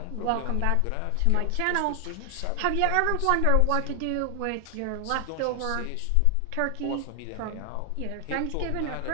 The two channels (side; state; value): both; different; correlation 0.00